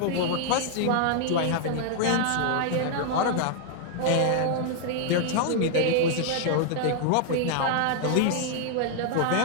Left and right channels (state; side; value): different; both; correlation 0.00